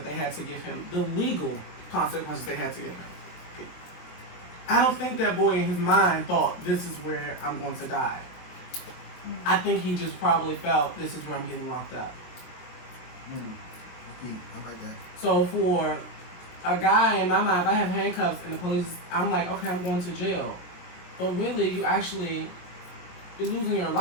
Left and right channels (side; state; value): right; late; 22 ms